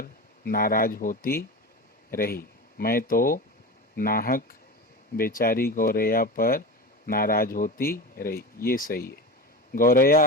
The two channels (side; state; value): both; normal; correlation 0.26